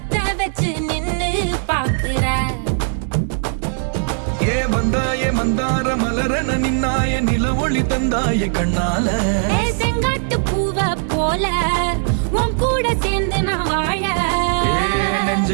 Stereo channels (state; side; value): silent; left; 67 dB below the other